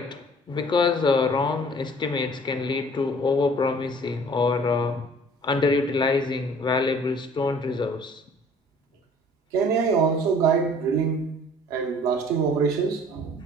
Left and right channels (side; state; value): both; normal; correlation 0.52